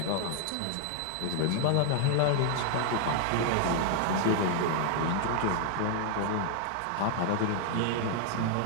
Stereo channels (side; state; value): both; different; correlation 0.00